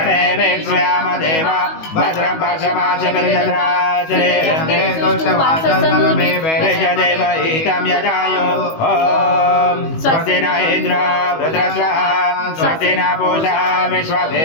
देवा भद्रं पक्षमाचरिन्द्राचरेदेव ईतं यदायो ॐ स्वस्ति न इन्द्रो वृत्रस्वः स्वस्ति न पूषा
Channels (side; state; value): right; late; 19 ms